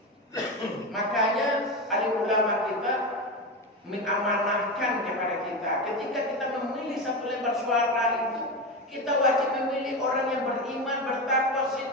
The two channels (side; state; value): both; normal; correlation 0.19